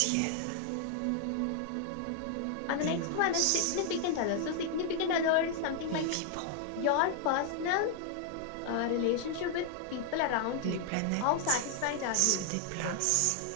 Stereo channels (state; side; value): different; both; correlation 0.00